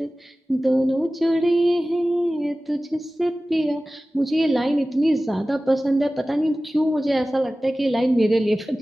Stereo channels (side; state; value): both; normal; correlation 0.97